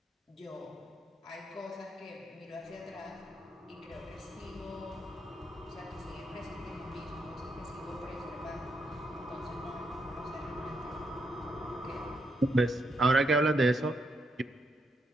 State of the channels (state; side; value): normal; both; correlation 0.78